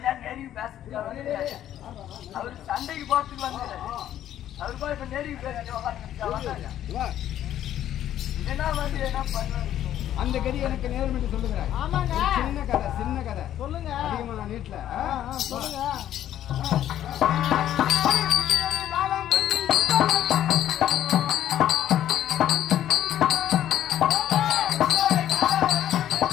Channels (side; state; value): right; quieter; 11.6 dB